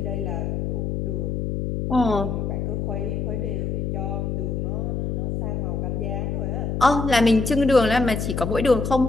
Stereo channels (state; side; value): noise; left; hum, 1 dB below the sound